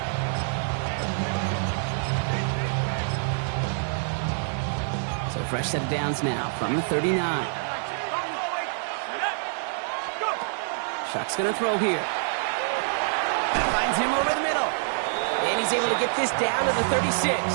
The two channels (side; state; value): left; silent; digital silence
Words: So fresh set of downs now from the 39. Shuck's going to throw here. Finds him over the middle. And he's able to get this down to the 36.